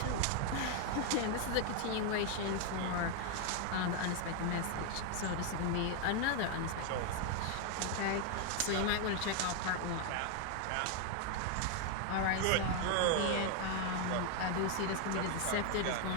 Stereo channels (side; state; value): both; different; correlation 0.00